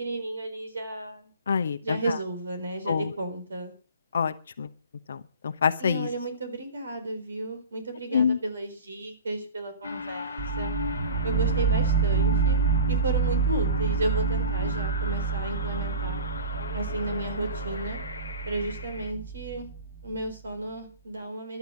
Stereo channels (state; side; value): inverted; both; correlation -0.39